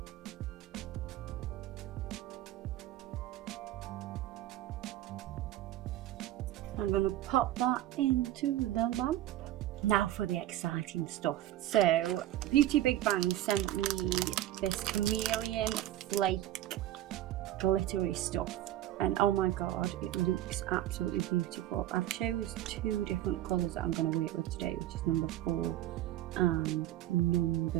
I'm going to pop that into the lamp. Now for the exciting stuff. So, Beauty Big Bang sent me this Chameleon Flake glittery stuff. And oh my god, it looks absolutely beautiful. I've chose 2 different colours that I'm going to work with today, which is number 4 and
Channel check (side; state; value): left; quieter; 13.7 dB